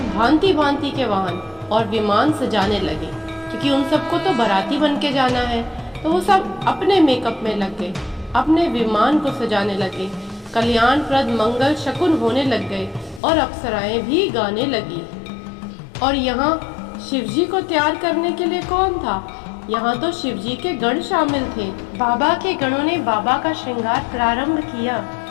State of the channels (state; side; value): drops out; right; at 13.2 s